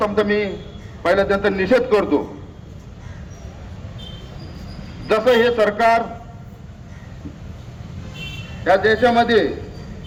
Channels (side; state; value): both; identical; correlation 1.00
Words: मी पहिला त्यांचा निषेध करतो। जसं हे सरकार या देशामध्ये